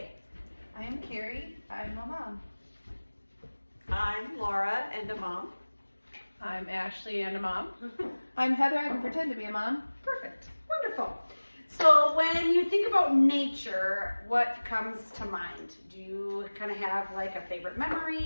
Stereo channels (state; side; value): inverted; both; correlation -1.00